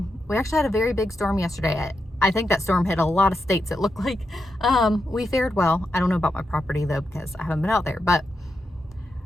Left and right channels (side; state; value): both; normal; correlation 0.86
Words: We actually had a very big storm yesterday. I think that storm hit a lot of states, it looked like. We fared well. I don't know about my property, though, because I haven't been out there. But